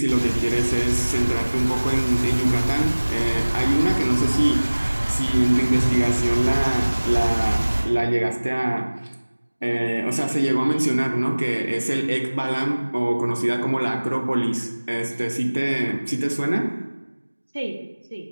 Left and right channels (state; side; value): inverted; both; correlation -1.00